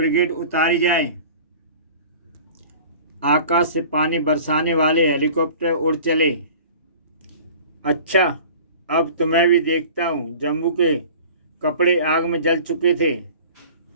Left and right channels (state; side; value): inverted; both; correlation -0.43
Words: उतारी जाए। आकाश से पानी बरसाने वाले हेलीकॉप्टर उड़ चले। अच्छा, अब तुम्हें भी देखता हूँ। जम्बू के कपड़े आग में जल चुके थे।